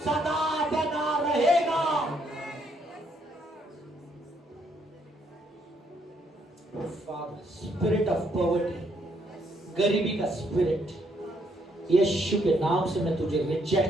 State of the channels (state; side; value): normal; both; correlation 0.72